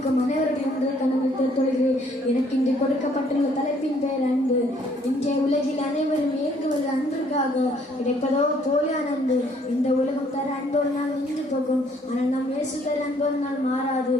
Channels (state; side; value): normal; both; correlation 0.64